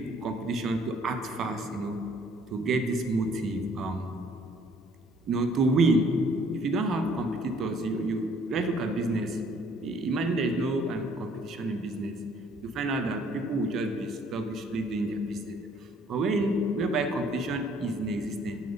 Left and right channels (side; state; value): both; normal; correlation 0.60